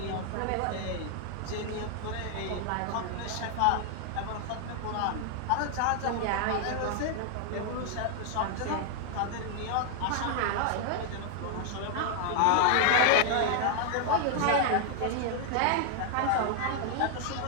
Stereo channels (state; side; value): different; both; correlation 0.00